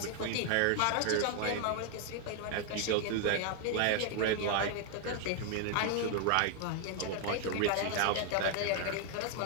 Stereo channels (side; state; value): both; different; correlation 0.00